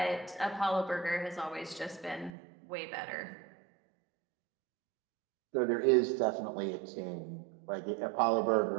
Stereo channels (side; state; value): left; drops out; at 2.3 s